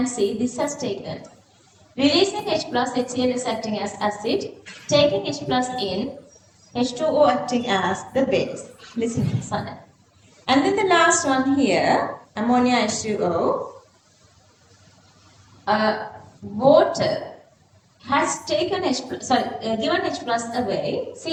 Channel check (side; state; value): both; identical; correlation 1.00